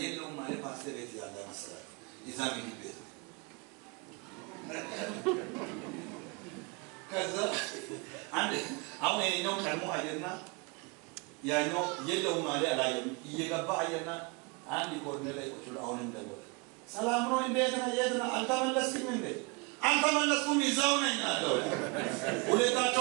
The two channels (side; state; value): left; quieter; 29.4 dB